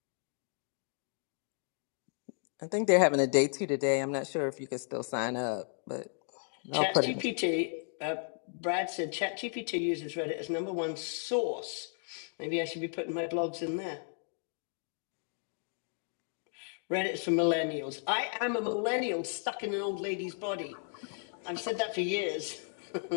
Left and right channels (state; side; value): silent; right; 55 dB below the other